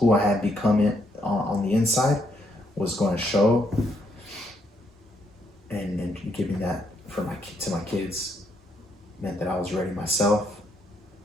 I had become on the inside was going to show, and giving that to my kids meant that I was ready myself.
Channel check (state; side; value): normal; both; correlation 0.74